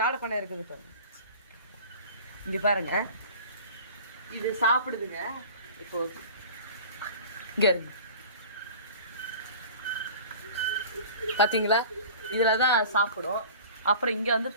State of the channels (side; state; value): both; inverted; correlation -0.41